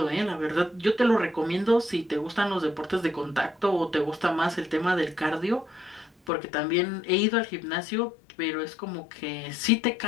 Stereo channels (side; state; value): right; drops out; at 6.3 s